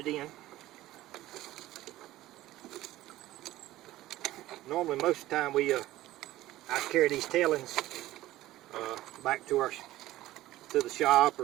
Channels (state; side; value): quieter; left; 15.9 dB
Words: in. Normally, most of the time, I carry these tailings back to the shop